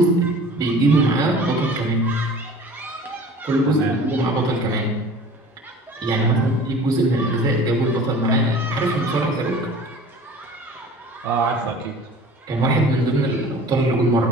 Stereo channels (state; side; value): normal; both; correlation 0.44